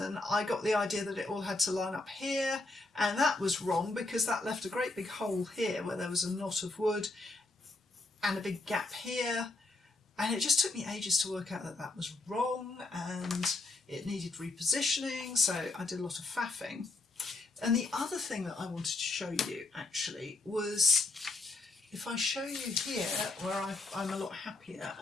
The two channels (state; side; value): quieter; right; 3.2 dB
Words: I got the idea that it all had to line up here, and that was wrong because that left a great big hole here where there was a knot of wood and a big gap here, and it just took me ages to work out that that was wrong and it needed repositioning, so I did a lot of faffing. And the other thing that I wanted to show you actually was, if I show you here where I'm a lot happier